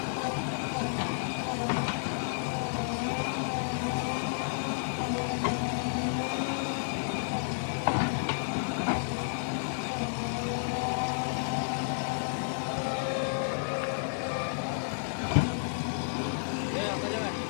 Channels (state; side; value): silent; right; digital silence